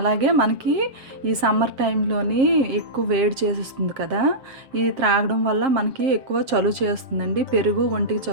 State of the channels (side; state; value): left; late; 7.5 ms